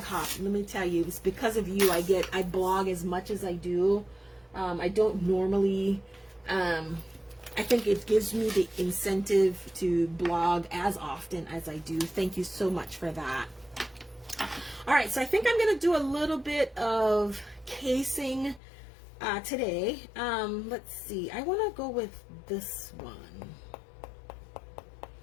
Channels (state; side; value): drops out; right; at 18.6 s